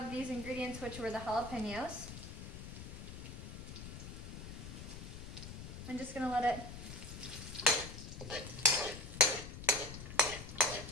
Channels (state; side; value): noise; left; rumble, 10 dB below the sound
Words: these ingredients, which were the jalapenos. I'm just going to let it